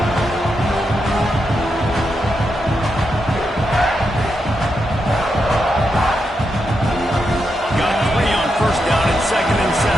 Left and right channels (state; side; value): normal; both; correlation 0.84